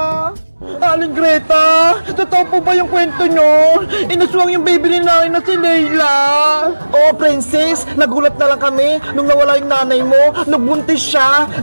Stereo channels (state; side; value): inverted; both; correlation -1.00